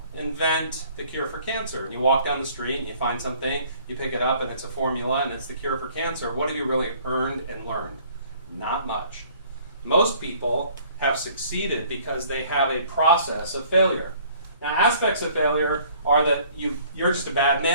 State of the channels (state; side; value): inverted; both; correlation -0.56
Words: invent the cure for cancer. And you walk down the street and you find something, you pick it up and it's a formula and it's the cure for cancer. What have you really earned and learned? Not much. Most people have succeeded because they have a process of failure. Now, aspects of failure are that you're just a bad